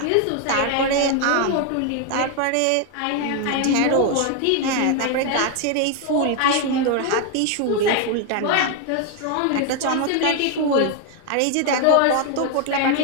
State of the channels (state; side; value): different; both; correlation 0.01